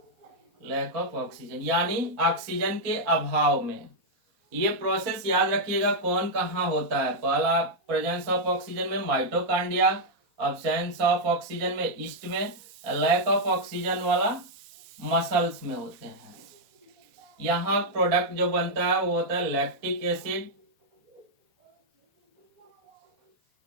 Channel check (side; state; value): left; late; 4.1 ms